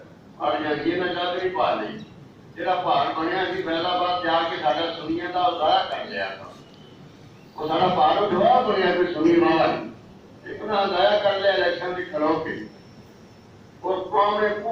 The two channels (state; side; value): identical; both; correlation 1.00